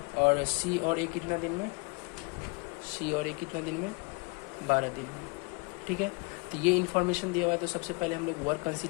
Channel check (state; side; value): quieter; right; 29.2 dB